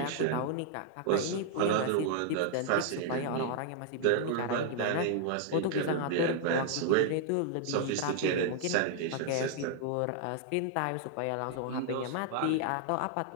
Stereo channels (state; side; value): different; both; correlation -0.01